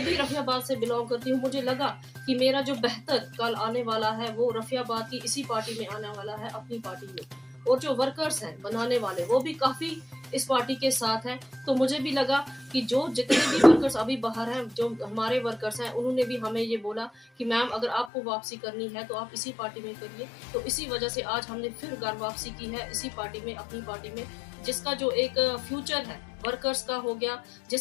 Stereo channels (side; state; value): right; drops out; at 18.1 s